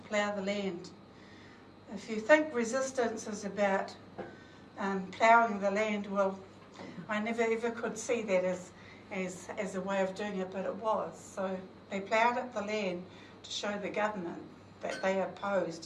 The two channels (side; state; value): both; identical; correlation 1.00